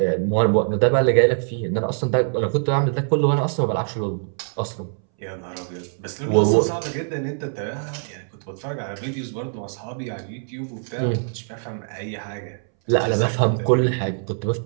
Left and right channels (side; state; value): left; silent; 63 dB below the other